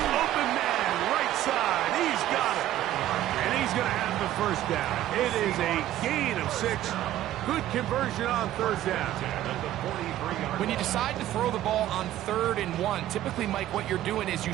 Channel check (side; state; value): left; quieter; 13.3 dB